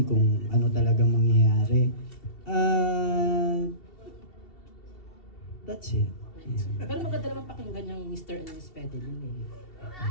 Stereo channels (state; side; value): late; right; 2.7 ms